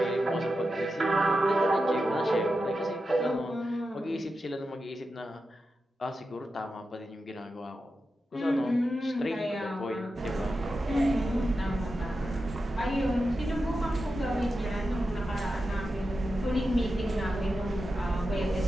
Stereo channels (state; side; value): normal; both; correlation 0.90